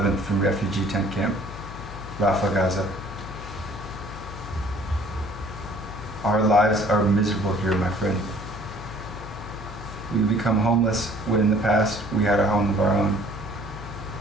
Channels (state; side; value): noise; left; hum, 12 dB below the sound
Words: from refugee tent camp, Rafah, Gaza. Our lives are miserable here, my friend. We become homeless when in the past we had a home of our own.